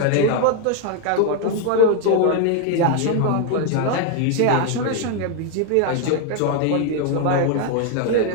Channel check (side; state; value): both; different; correlation 0.00